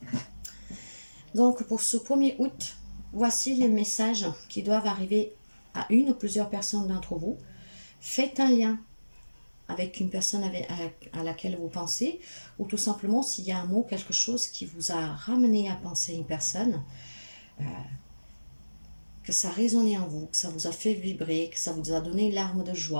Donc, pour ce 1er août, voici les messages qui doivent arriver à une ou plusieurs personnes d'entre vous. Faites un lien avec une personne à laquelle vous pensez, ou tout simplement s'il y a un mot, quelque chose qui vous a ramené à penser à une personne, que ça a résonné en vous, que ça vous a fait vibrer, que ça vous a donné une larme de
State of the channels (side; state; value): both; inverted; correlation -1.00